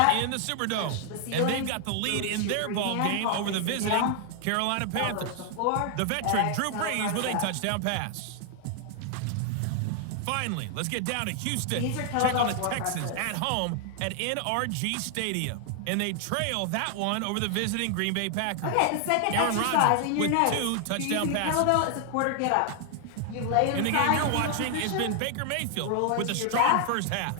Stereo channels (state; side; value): different; both; correlation 0.00